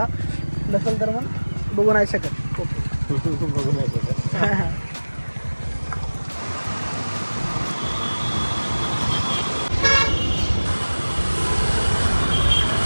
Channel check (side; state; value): both; inverted; correlation -1.00